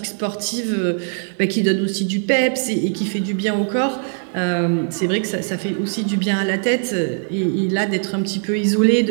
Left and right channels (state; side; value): silent; left; 60 dB below the other